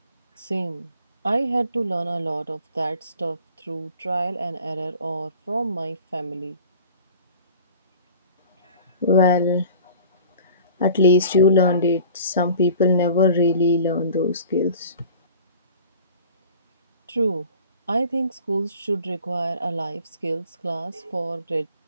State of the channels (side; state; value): both; inverted; correlation -0.45